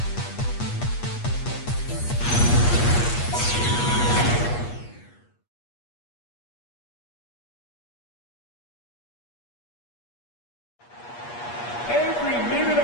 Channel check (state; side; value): late; right; 8.4 ms